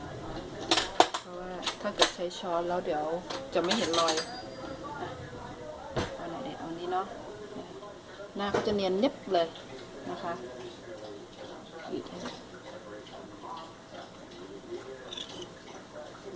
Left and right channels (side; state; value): both; identical; correlation 1.00